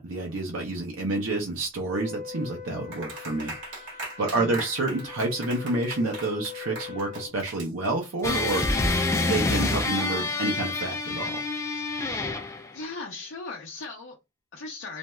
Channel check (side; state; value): both; normal; correlation 0.29